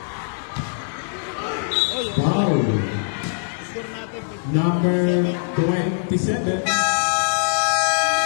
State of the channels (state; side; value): silent; right; 56 dB below the other